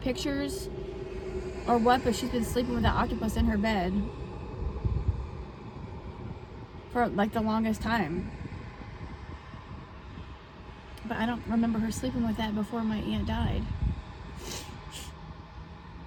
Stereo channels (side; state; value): both; identical; correlation 1.00